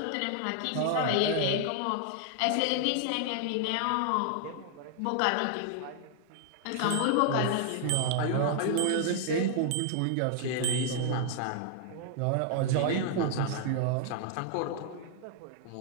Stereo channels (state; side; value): different; both; correlation 0.00